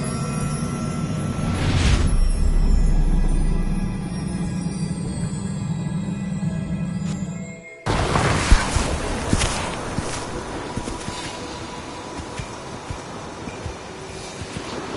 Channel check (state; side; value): identical; both; correlation 1.00